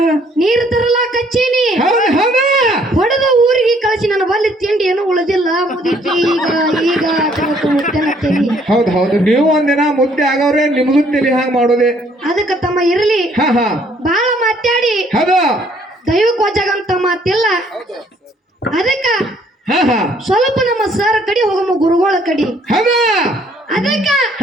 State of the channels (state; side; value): normal; both; correlation 0.63